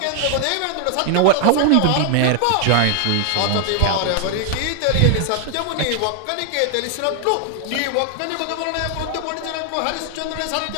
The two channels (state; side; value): different; both; correlation 0.00